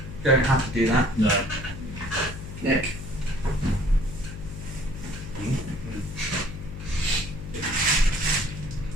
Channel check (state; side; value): noise; left; hum, 10 dB below the sound